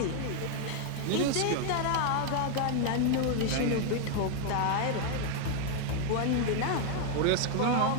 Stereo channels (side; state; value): both; different; correlation 0.00